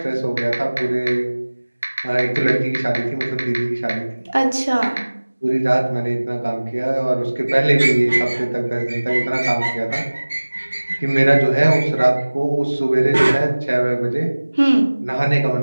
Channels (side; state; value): both; inverted; correlation -1.00